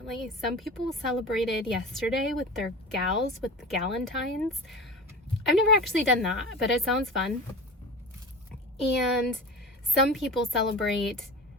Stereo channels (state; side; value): normal; both; correlation 0.33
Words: Some people celebrated yesterday with their gals, with the Valentines. I've never actually done that, but it sounds fun. And some people celebrate